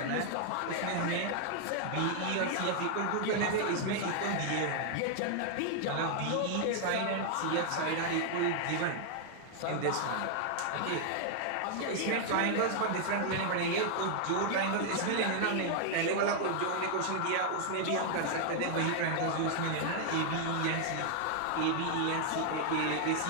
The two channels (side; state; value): both; different; correlation 0.00